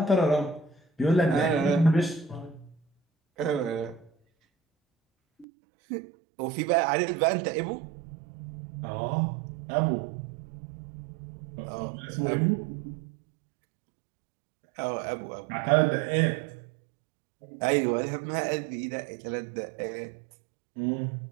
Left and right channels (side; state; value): left; drops out; at 5.5 s